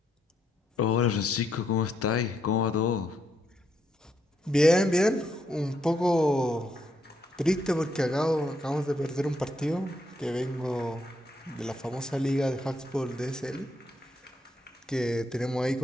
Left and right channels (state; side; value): normal; both; correlation 0.77